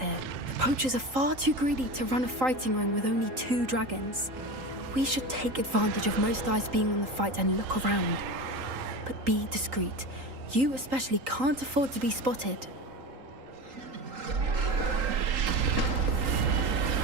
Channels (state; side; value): late; left; 3.8 ms